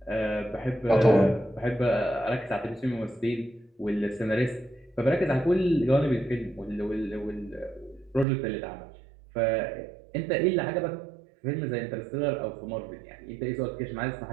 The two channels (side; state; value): left; drops out; at 8.2 s